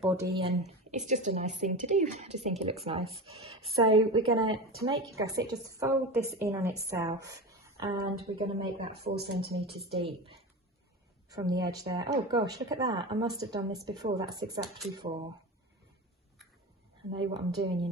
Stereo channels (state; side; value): normal; both; correlation 0.26